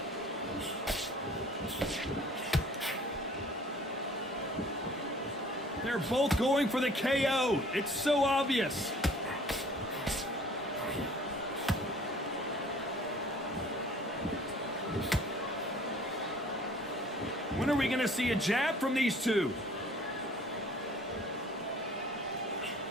They're both going for the KO. It's so obvious. When are we going to see a jab from these two?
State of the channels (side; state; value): both; normal; correlation 0.52